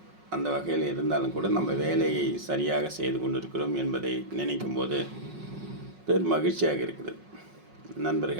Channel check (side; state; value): left; late; 5.4 ms